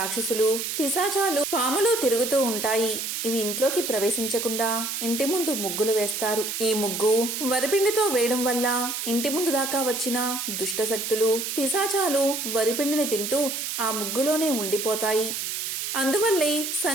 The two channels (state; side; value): noise; right; hiss, 3 dB below the sound